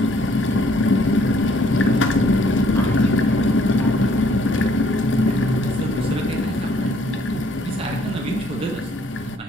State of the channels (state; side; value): normal; both; correlation 0.63